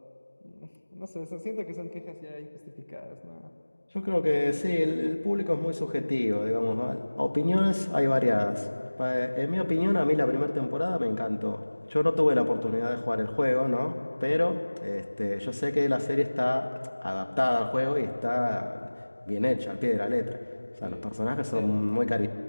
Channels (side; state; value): both; inverted; correlation -1.00